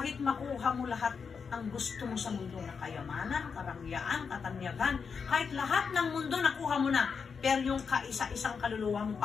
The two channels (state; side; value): quieter; right; 5.8 dB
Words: makuha mo lahat ang gusto mo sa mundo na kayamanan, karangyaan, katanyagan, kahit lahat ng mundo nakuha mo na, pero yung kaisa-isang kaluluwa mo